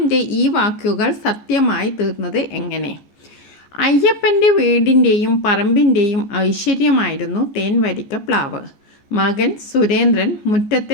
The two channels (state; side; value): late; right; 14 ms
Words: ഈ വാക്കുകൾ സത്യമായി തീർന്നത് എങ്ങനെ? അയ്യപ്പൻ്റെ വീടിൻ്റെയും പറമ്പിൻ്റെയും ഐശ്വര്യമായിരുന്നു തേൻവരിക്ക പ്ലാവ്. മകൻ സുരേന്ദ്രൻ